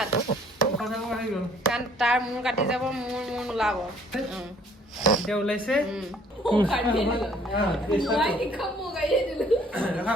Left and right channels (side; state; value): both; normal; correlation 0.59